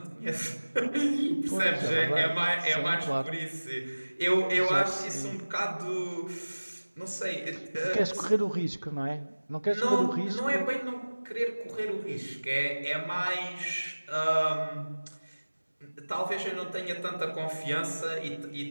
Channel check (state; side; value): inverted; both; correlation -1.00